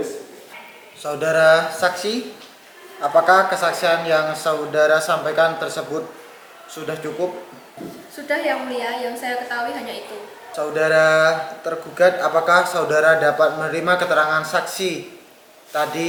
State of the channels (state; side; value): identical; both; correlation 1.00